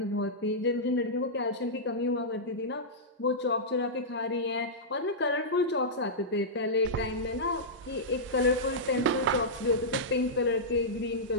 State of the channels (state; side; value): normal; both; correlation -0.11